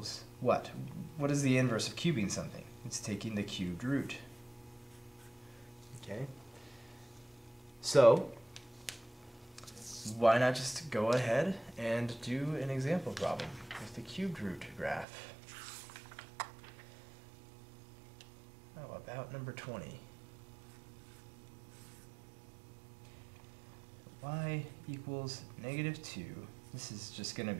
what? What is the inverse of cubing something? It's taking the cubed root. Okay? So why not just go ahead and do an example problem with the cubed root graph? How about number 20? Y equals -2. This is just going to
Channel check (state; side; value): drops out; left; at 15.1 s